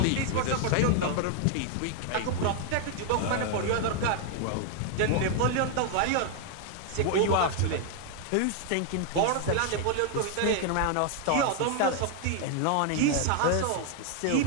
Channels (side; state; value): both; different; correlation 0.00